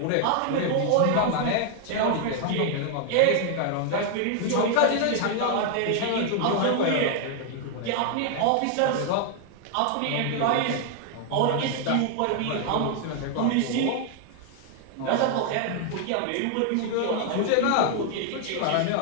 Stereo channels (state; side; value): different; both; correlation 0.00